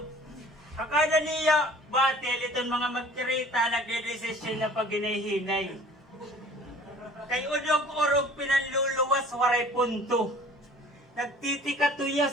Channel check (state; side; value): normal; both; correlation 0.49